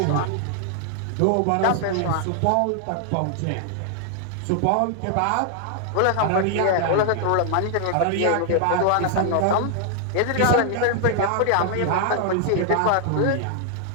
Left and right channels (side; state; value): both; different; correlation 0.00